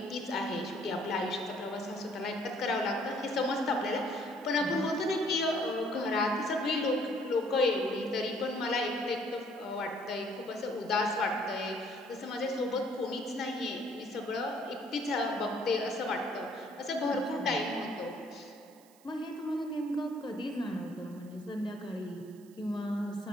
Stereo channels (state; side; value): noise; right; hiss, 27 dB below the sound